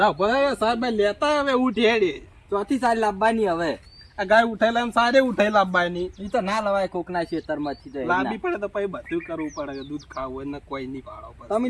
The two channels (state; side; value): identical; both; correlation 1.00